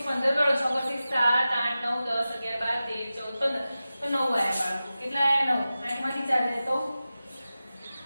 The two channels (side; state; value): both; inverted; correlation -0.94